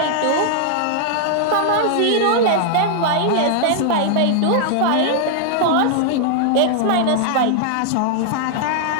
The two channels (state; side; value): different; both; correlation 0.00